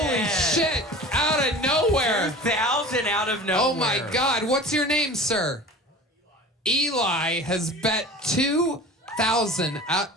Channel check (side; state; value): both; normal; correlation 0.38